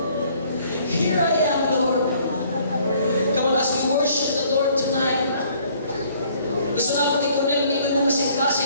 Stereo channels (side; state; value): both; inverted; correlation -0.60